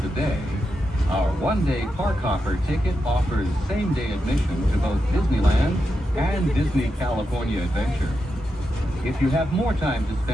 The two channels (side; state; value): both; normal; correlation 0.87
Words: day, our one-day park hopper ticket offers same-day admission to both Disneyland and Disney California Adventure. If you have more time to